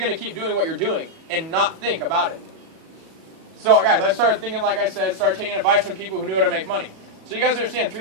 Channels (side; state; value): left; late; 37 ms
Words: to keep doing what you're doing and not think about it. So, guys, I started thinking, like I said, started taking advice from people who knew how to make money. So you guys understand,